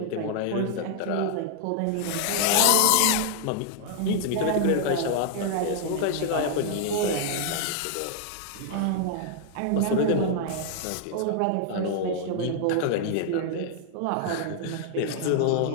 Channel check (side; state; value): both; different; correlation 0.00